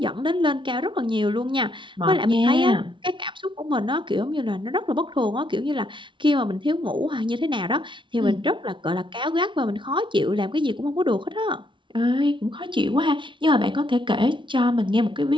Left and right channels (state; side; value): late; left; 0.24 ms